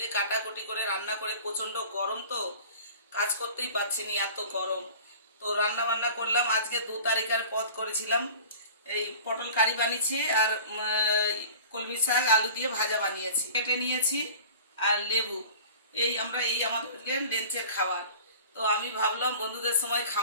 কাটাকুটি করে রান্না করে, প্রচণ্ড গরম তো কাজ করতেই পারছি না, এত গরম। তো রান্না বান্না করলাম। আজকে 2 তারিখের পদ করেছিলাম, এই পটল কারি বানিয়েছি আর কলমি শাক আলু দিয়ে ভাজা বানিয়েছি, কেটে নিয়েছি। আর লেবু, এই আমাদের লেন্সের খাবার। তো আমি ভাবলাম বন্ধুদের সময়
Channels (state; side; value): inverted; both; correlation -0.41